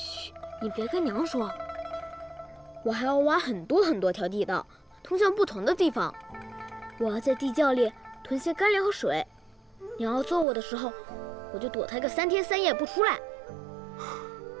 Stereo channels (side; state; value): left; drops out; at 10.5 s